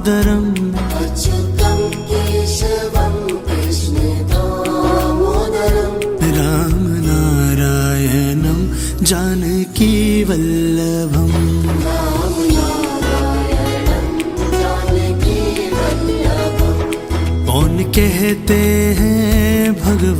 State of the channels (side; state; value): both; identical; correlation 1.00